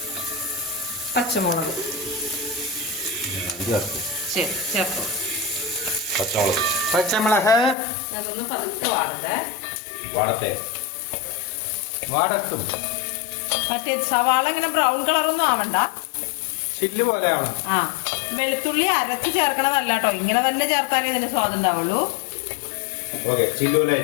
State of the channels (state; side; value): drops out; right; at 7.8 s